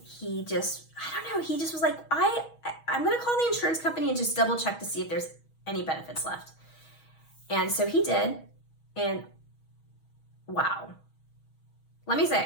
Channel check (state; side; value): late; right; 6.3 ms